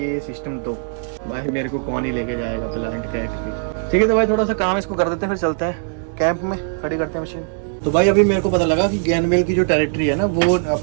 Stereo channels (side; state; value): left; silent; digital silence